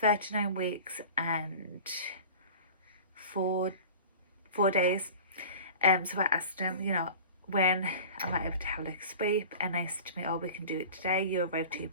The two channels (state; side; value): inverted; both; correlation -0.39